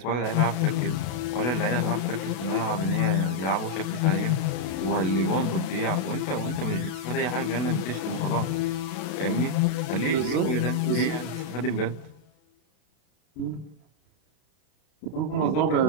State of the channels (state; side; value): late; right; 32 ms